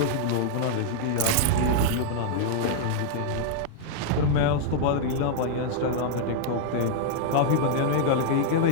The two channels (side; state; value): both; different; correlation -0.01